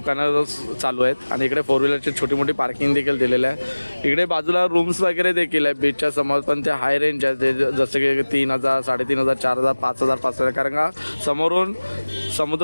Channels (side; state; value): both; inverted; correlation -1.00